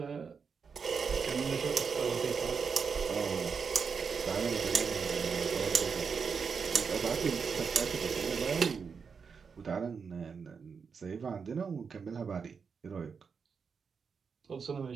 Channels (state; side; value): quieter; left; 5.8 dB